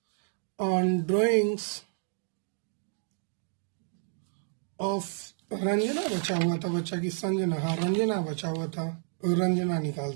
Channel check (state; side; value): silent; left; 58 dB below the other